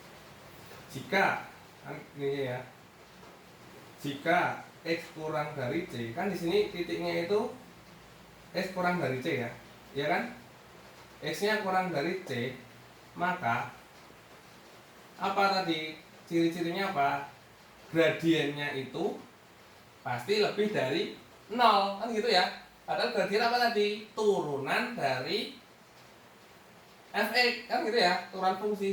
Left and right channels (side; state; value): both; identical; correlation 1.00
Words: Jika kan ini ya. Jika X kurang dari C, kan di sini titiknya itu X kurang dari C ya. Ya kan? X-nya kurang dari C, maka apa tadi? Ciri-cirinya apa? Gradiennya itu pasti lebih dari 0, kan gitu ya. Padahal gradien apa tadi? Turunan dari fx, kan gitu ya, turunan